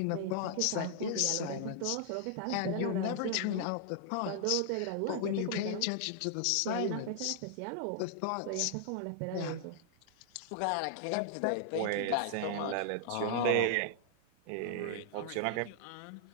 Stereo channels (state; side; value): different; both; correlation -0.01